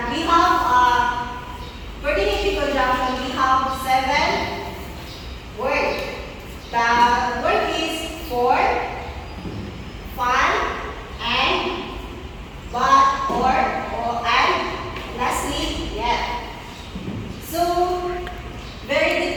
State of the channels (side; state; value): both; identical; correlation 1.00